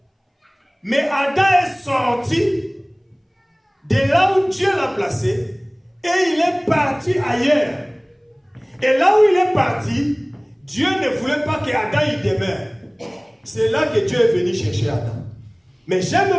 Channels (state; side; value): identical; both; correlation 1.00